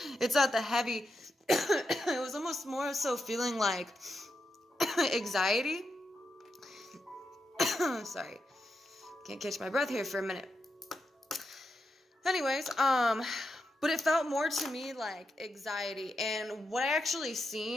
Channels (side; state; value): both; normal; correlation 0.86